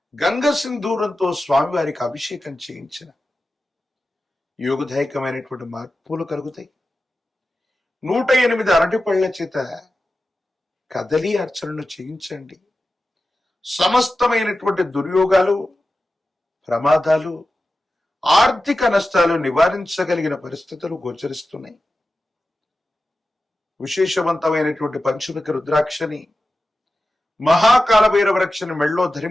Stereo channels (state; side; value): normal; both; correlation 0.93